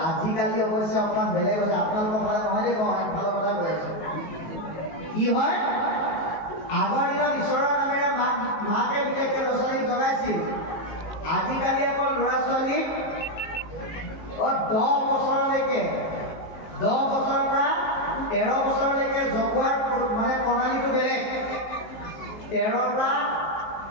আজিকালি অৱশ্যে অকণমান বেলেগ হৈছে। আপোনালোকৰ ফালে নহয় দেই, মই ফালৰ কথা কৈ আছো। কি হয়, আগৰ দিনত ঈশ্বৰৰ নামেৰে মাকে বিশেষকৈ ল'ৰা ছোৱালীক জগাইছিল। আজিকালি আকৌ ল'ৰা ছোৱালীক 10 বছৰলৈকে, 10 বছৰৰ পৰা 13 বছৰলৈকে জগোৱাৰ মানে প্ৰণালীটো বেলেগ। 13ৰ পৰা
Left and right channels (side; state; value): right; late; 19 ms